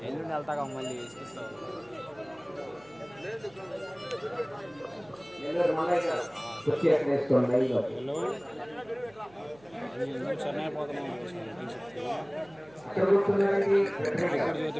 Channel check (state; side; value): noise; right; hum, 26 dB below the sound